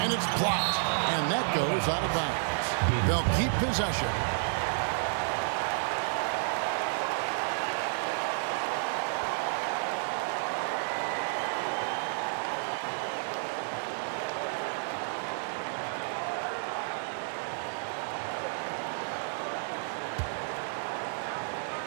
And it's blocked. And that goes out of bounds. They'll keep possession.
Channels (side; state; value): left; silent; digital silence